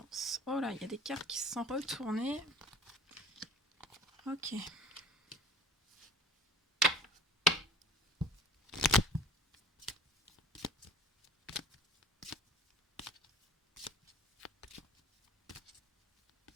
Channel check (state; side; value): normal; both; correlation 0.45